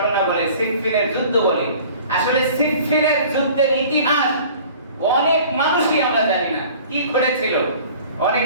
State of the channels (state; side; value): inverted; both; correlation -0.47